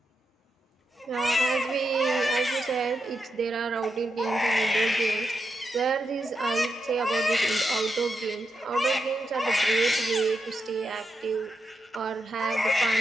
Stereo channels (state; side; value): normal; both; correlation 0.85